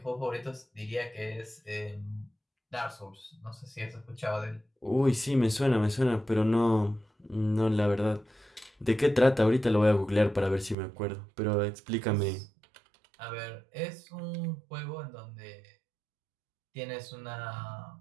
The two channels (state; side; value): drops out; left; at 10.8 s